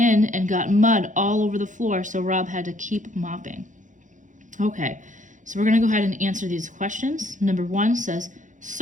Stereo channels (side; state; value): left; late; 0.37 ms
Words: and got mud all over the floor, so Rob had to keep mopping. Okay, so we're gonna go ahead and answer these questions. Number 1 says,